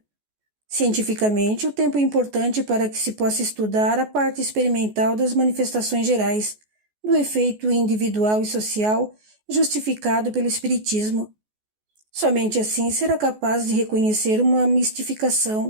Cientificamente, o tempo é importante para que se possa estudar a parte experimental das manifestações gerais, do efeito individual e social justificado pelo espiritismo. Somente assim será capaz de reconhecer uma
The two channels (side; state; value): left; late; 14 ms